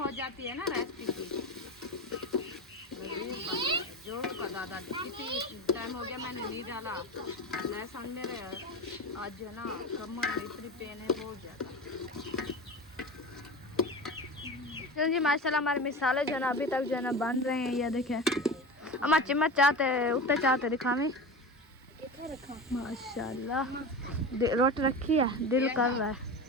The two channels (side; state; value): both; normal; correlation 0.27